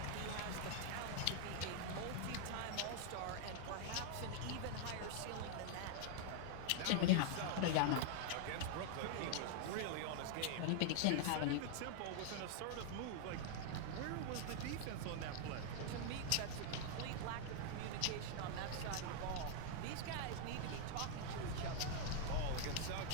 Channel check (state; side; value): different; both; correlation 0.00